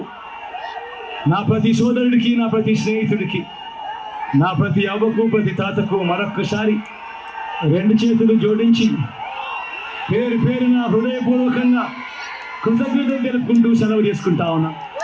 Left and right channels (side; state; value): both; identical; correlation 1.00